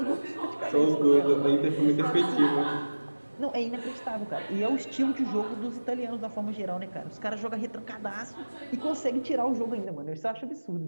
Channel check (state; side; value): inverted; both; correlation -1.00